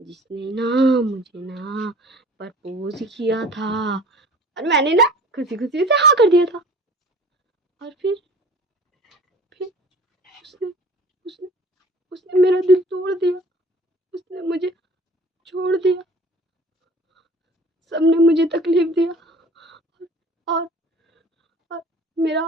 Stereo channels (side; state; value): both; normal; correlation 0.46